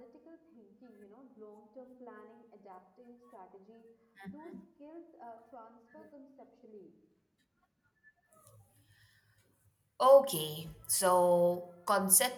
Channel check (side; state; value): both; identical; correlation 1.00